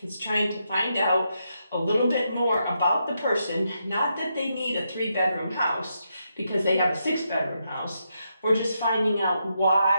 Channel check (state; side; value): inverted; both; correlation -0.82